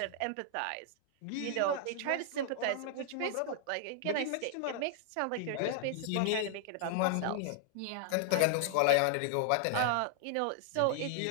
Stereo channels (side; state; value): both; different; correlation 0.00